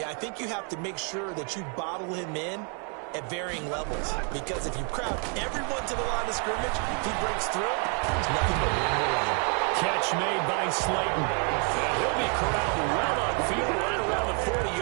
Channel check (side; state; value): left; quieter; 38.8 dB